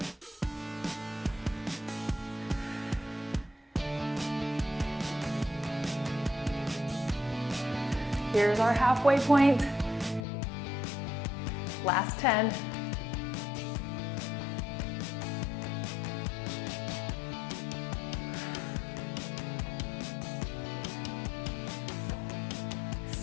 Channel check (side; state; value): right; drops out; at 10.2 s